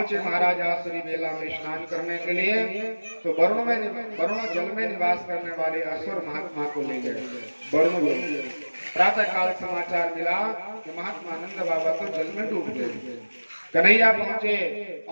महाराज आसुरी मेला में स्नान करने के लिए, तो वरुण जल में निवास करने वाले असुर महात्मा को ले गए वरुण लोग। प्रातः काल समाचार मिला कि महात्मा नंद बाबा तो जल में डूब गए। कन्हैया पहुंचे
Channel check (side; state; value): both; inverted; correlation -1.00